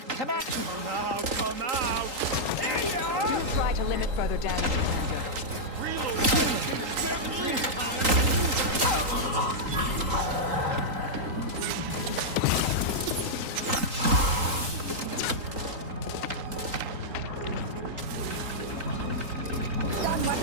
Command. Come out, come out! There you are! Try to limit further damage, Commander. Reload! 17 times! Stun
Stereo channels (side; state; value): left; late; 3.8 ms